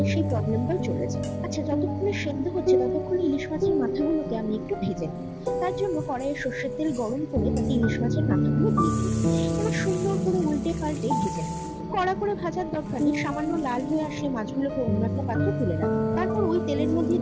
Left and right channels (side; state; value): both; identical; correlation 1.00